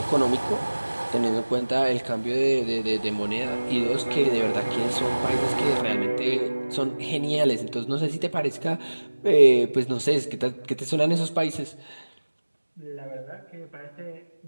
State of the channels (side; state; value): both; inverted; correlation -1.00